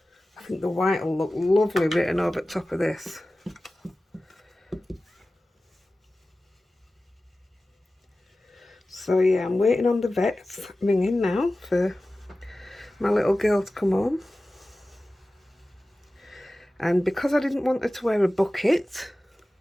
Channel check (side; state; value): both; normal; correlation 0.96